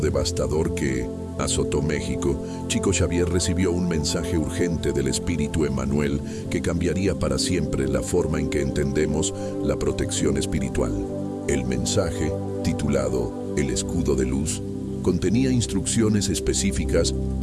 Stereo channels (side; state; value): both; identical; correlation 1.00